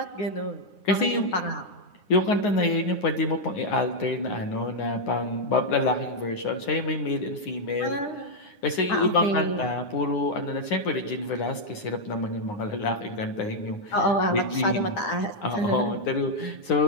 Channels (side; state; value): right; late; 9.7 ms